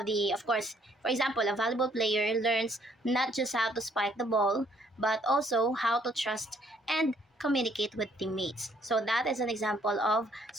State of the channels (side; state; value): both; normal; correlation 0.66